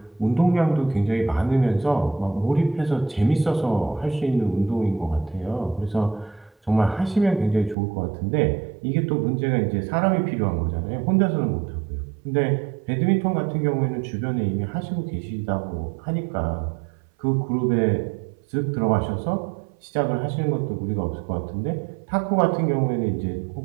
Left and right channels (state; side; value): drops out; left; at 7.8 s